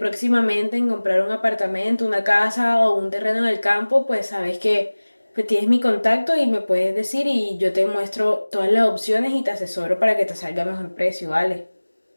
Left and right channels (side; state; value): both; inverted; correlation -1.00